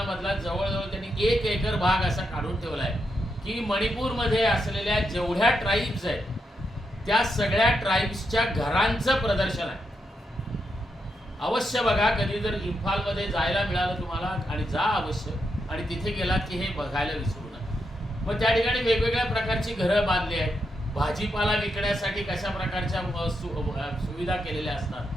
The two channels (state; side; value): normal; both; correlation 0.83